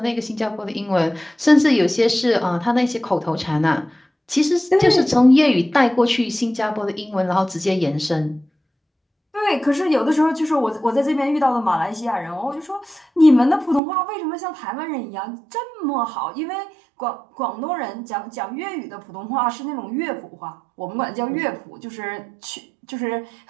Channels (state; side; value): drops out; left; at 13.8 s